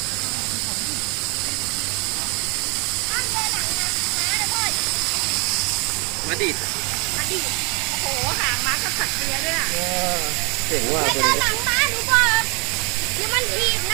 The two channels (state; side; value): quieter; left; 32.3 dB